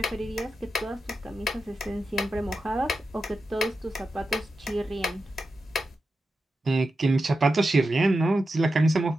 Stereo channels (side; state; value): both; normal; correlation 0.90